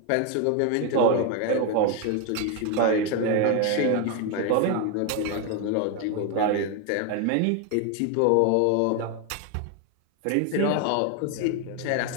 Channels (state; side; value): different; both; correlation 0.02